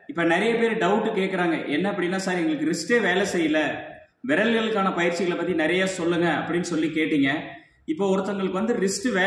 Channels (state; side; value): identical; both; correlation 1.00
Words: இப்போ நிறைய பேர் டவுட்டு கேட்குறாங்க. என்ன அப்படின்னா, சார் எங்களுக்கு ரிஸ்டே வேலை செய்யல, விரல்களுக்கான பயிற்சிகளை பற்றி நிறைய சொல்லுங்க அப்படின்னு சொல்லி கேட்டீங்க. இப்போ ஒருத்தங்களுக்கு வந்து ரிஸ்ட்